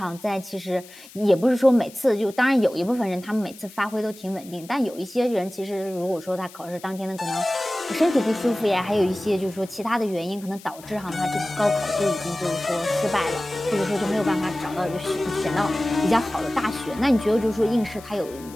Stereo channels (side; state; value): left; noise; hiss, 20 dB below the sound